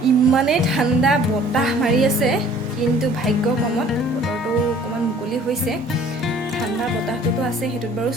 ইমানেই ঠাণ্ডা বতাহ মাৰি আছে, কিন্তু ভাগ্য কমত বতৰটো অকণমান মুকলি হৈছে। ঠাণ্ডা বতাহটোতো আছে, সেইটোত বাৰু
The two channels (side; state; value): both; normal; correlation 0.53